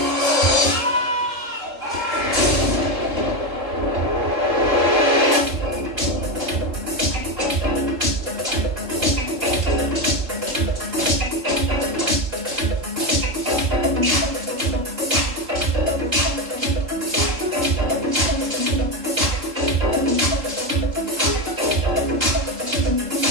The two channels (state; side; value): late; left; 3.8 ms